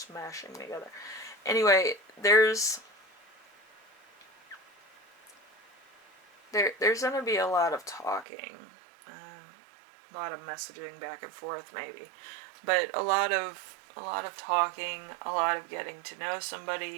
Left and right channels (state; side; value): drops out; left; at 8.2 s